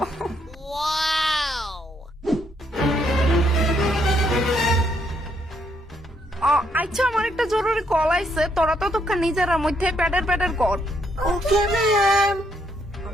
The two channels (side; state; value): both; normal; correlation 0.73